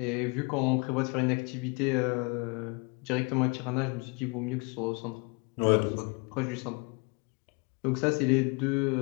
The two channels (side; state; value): right; quieter; 30.7 dB